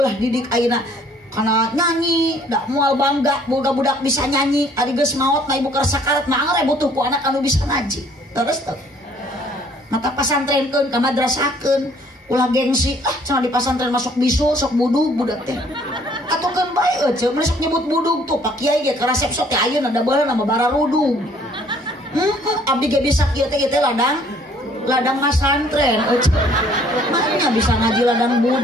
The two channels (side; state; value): both; normal; correlation 0.59